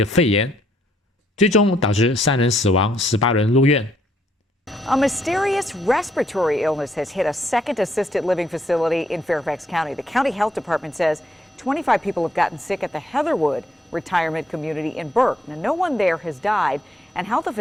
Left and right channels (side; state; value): both; normal; correlation 0.71